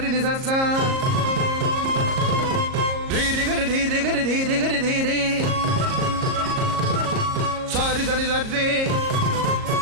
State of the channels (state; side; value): late; left; 38 ms